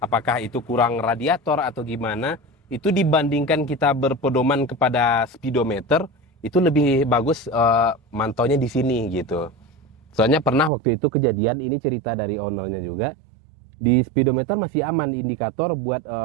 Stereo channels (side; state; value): left; drops out; at 10.7 s